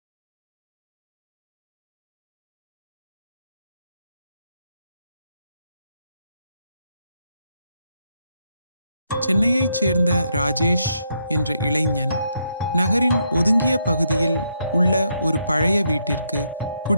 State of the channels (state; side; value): inverted; both; correlation -0.78